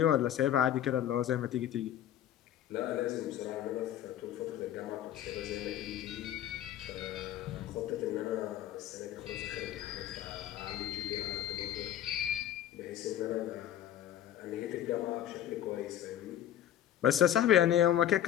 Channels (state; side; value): quieter; right; 11.4 dB